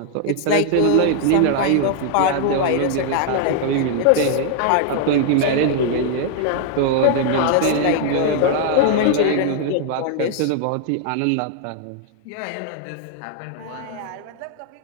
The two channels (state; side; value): different; both; correlation 0.00